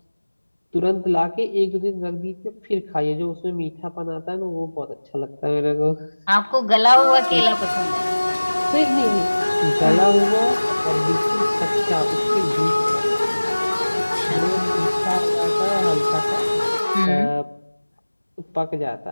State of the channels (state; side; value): inverted; both; correlation -1.00